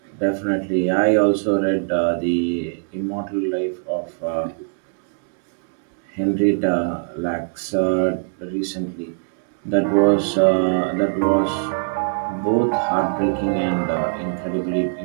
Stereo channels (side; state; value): left; silent; digital silence